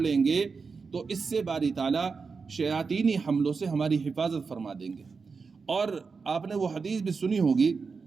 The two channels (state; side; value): quieter; left; 4.9 dB